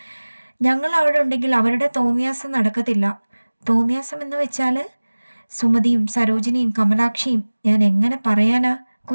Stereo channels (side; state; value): both; inverted; correlation -1.00